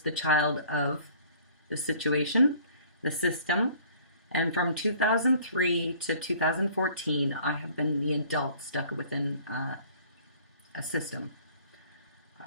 child of the situation, the system, and from 2003 to 2014, I have been the adult stuck within a system.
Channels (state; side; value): inverted; both; correlation -0.53